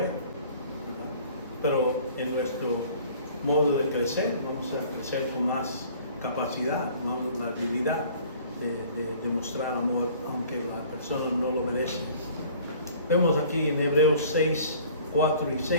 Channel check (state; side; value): inverted; both; correlation -0.50